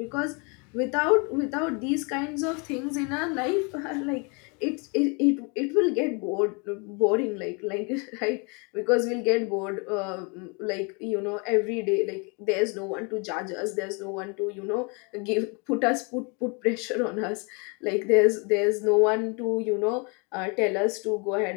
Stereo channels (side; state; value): right; quieter; 33.0 dB